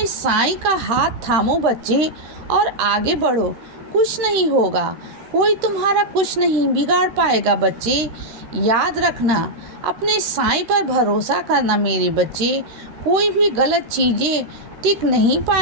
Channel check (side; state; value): left; late; 13 ms